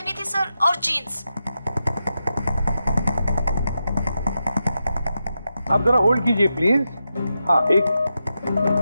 थी सर और जीन्स। आप जरा होल्ड कीजिए प्लीज। हाँ एक,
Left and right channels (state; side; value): inverted; both; correlation -0.88